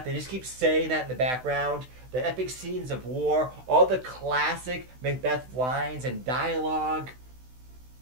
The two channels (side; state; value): left; late; 16 ms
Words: they just keep saying that in the background. The epic scenes of war, all the classic Macbeth lines and dialogue.